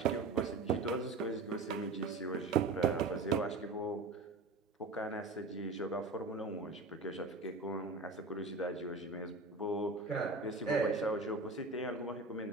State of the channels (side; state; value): left; quieter; 3.5 dB